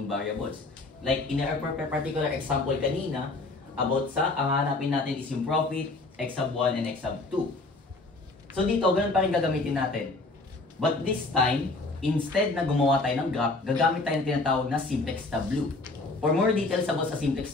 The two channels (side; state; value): right; quieter; 3.2 dB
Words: variables. Like in our particular example kanina, about sa, ang hanapin natin is yung profit, x sub 1 and x sub 2. So dito, ganun pa rin gagamitin natin. But this time, instead na gumawa tayo ng graph, gagamit tayo ng tinatawag na simplex tableau. For more details about sa simplex